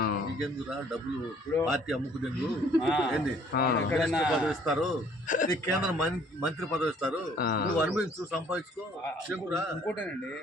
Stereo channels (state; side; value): normal; both; correlation 0.59